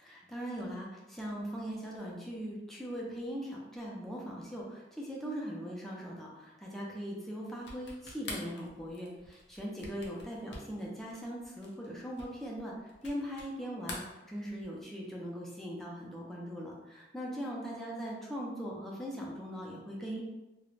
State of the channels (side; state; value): both; normal; correlation 0.71